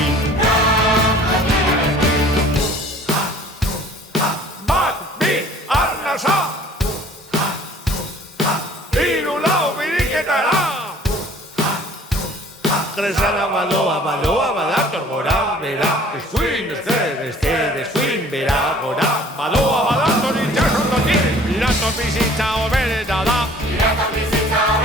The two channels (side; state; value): both; normal; correlation 0.52